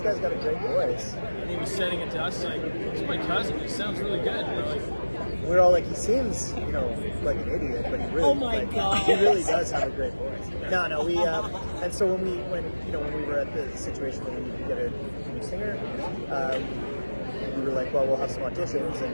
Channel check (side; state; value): both; inverted; correlation -1.00